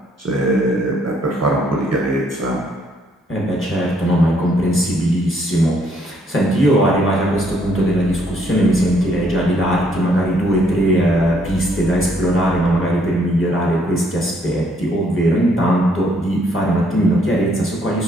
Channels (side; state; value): both; normal; correlation 0.68